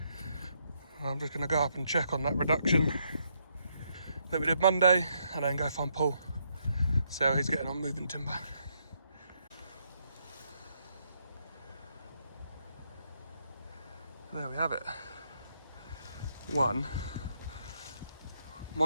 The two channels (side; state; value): both; inverted; correlation -0.75